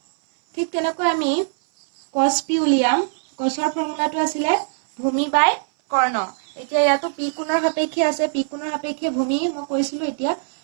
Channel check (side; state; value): left; silent; 61 dB below the other